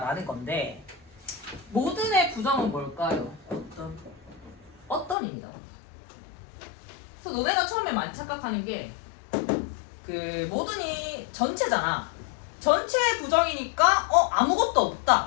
건데 모든의 부정은 뭘까요? 어떤입니다. 그래서 너네가 처음에 많이 착각하는 게 그 모든이 전체잖아. 전체 부정이니까 아무것도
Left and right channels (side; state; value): right; drops out; at 5.2 s